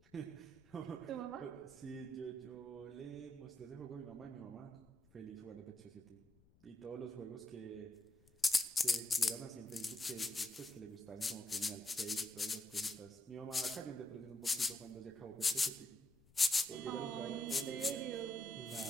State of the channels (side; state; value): left; noise; rumble, 28 dB below the sound